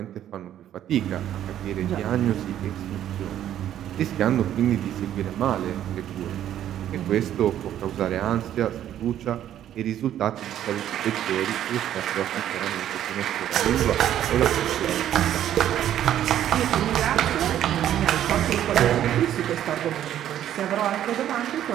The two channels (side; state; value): left; quieter; 11.3 dB